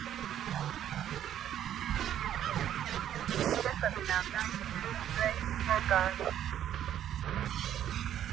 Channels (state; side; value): quieter; left; 10.7 dB